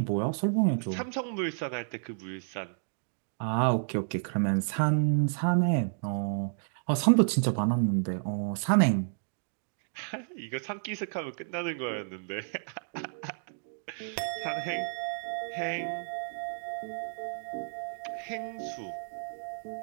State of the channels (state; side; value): silent; left; digital silence